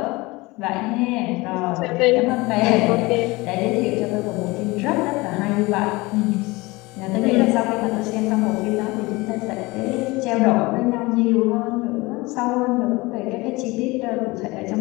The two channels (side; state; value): right; quieter; 22.6 dB